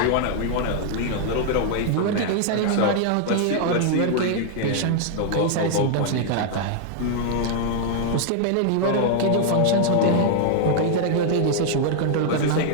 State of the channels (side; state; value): both; different; correlation 0.00